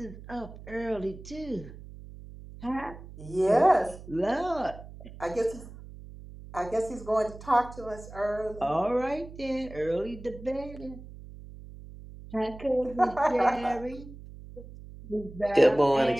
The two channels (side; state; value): right; noise; hum, 15 dB below the sound